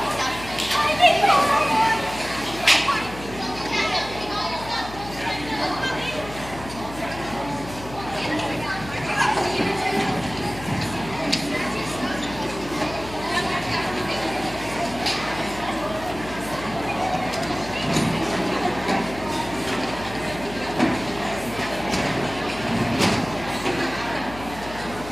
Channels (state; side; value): noise; left; hum, 14 dB below the sound